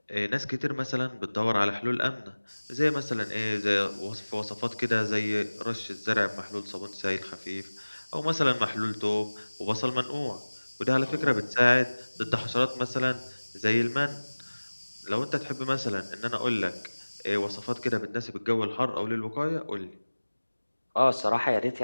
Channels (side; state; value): both; inverted; correlation -1.00